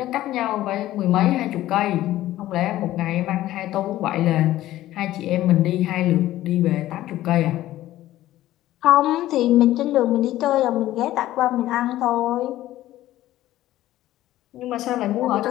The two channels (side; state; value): right; quieter; 14.7 dB